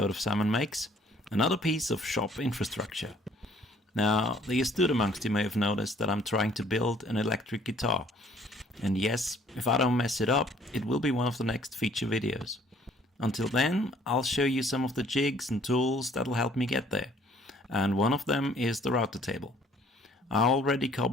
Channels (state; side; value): normal; both; correlation 0.59